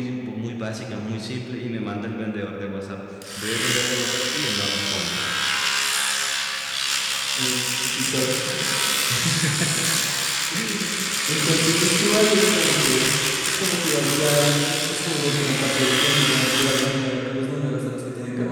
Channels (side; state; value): both; identical; correlation 1.00